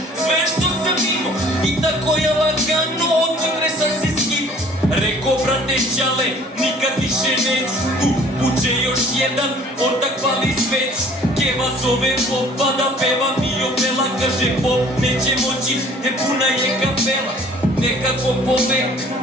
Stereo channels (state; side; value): normal; both; correlation 0.53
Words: sve što sam imao i tako je lagano od utre sam se skino. Reko brate čale, nikad više neću tu. Buče još jedan, ortak pali sveć. Keva zove popa da peva mi opela. Kaže pop neće moći jer puna je kapela. Nekako povek